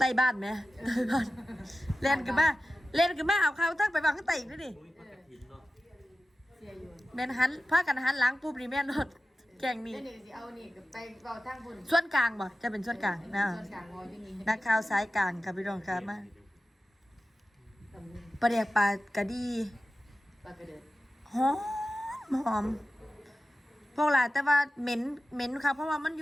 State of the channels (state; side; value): normal; both; correlation 0.94